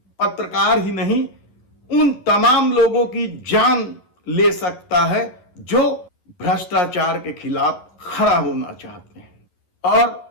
पत्रकार ही नहीं, उन तमाम लोगों की जान ले सकता है जो भ्रष्टाचार के खिलाफ खड़ा होना चाहते हैं। और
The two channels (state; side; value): late; right; 11 ms